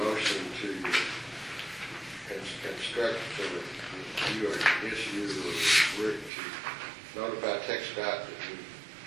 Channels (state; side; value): drops out; left; at 6.3 s